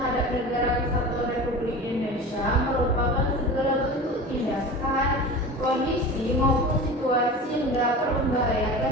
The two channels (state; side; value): normal; both; correlation 0.33